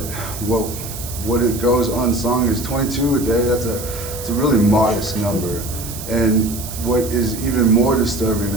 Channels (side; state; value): right; noise; hiss, 10 dB below the sound